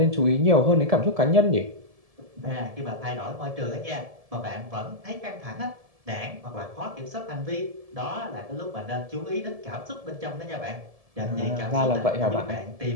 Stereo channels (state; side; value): late; left; 1.7 ms